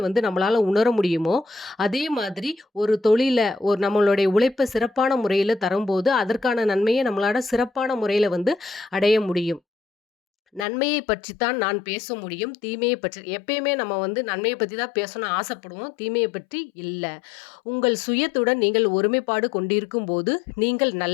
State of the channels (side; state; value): right; drops out; at 10.7 s